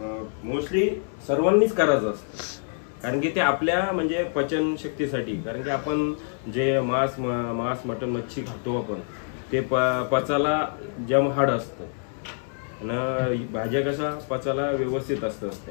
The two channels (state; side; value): silent; right; 61 dB below the other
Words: मोस्टली सर्वांनीच करायचा असतो। कारण की ते आपल्या म्हणजे पचन शक्तीसाठी, कारण की आपण जे मांस मटण मच्छी खातो आपण ते पचाला जम हाड असतं आणि भाज्या कसा पचाला व्यवस्थित असतं।